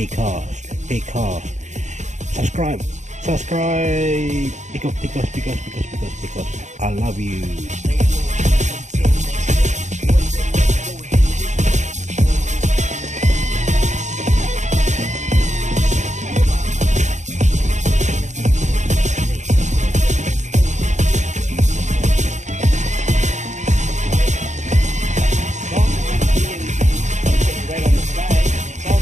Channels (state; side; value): late; left; 0.34 ms